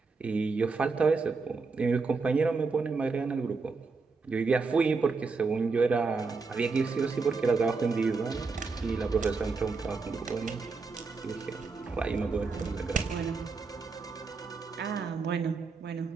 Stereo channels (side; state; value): left; quieter; 4.4 dB